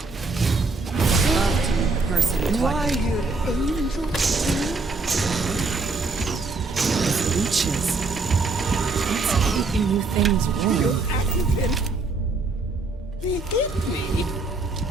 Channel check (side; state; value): left; quieter; 3.7 dB